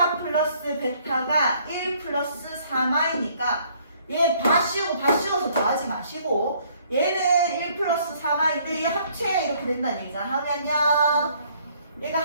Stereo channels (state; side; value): inverted; both; correlation -0.63